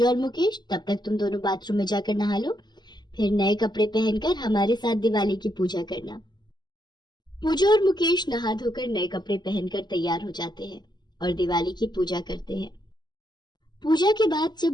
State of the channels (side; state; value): right; late; 0.21 ms